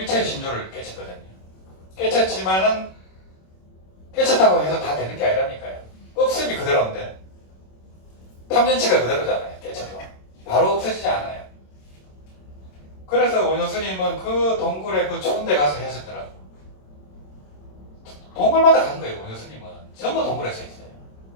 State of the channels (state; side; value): late; right; 27 ms